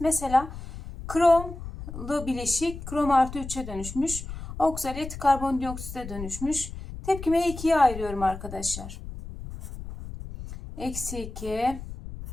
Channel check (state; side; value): noise; left; rumble, 11 dB below the sound